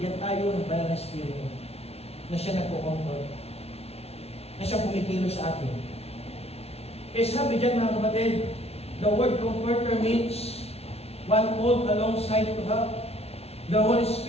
tayo ng banal na Espiritu na siya nagpo-comfort, na siya pumikilos sa atin. Kaya sabi dyan mga kapatid, the word comforter means one called alongside to help. The Holy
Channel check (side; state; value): right; late; 0.30 ms